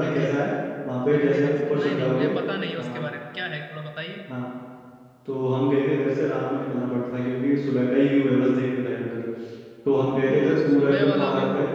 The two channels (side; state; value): both; identical; correlation 1.00